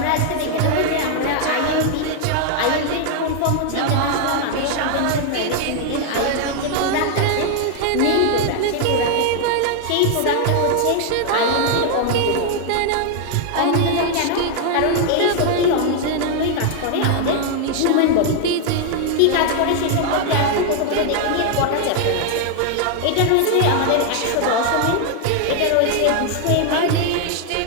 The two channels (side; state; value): both; different; correlation 0.00